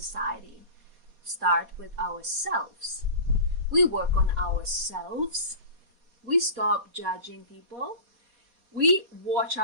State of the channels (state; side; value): late; left; 4.2 ms